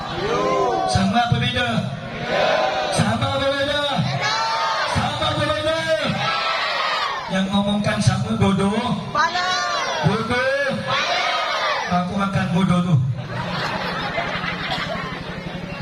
Sama apa beda? Sama apa beda? Sama apa beda? Yang ngomongkan sama bodoh. Bodoh. Aku makan bodoh tu.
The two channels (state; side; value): identical; both; correlation 1.00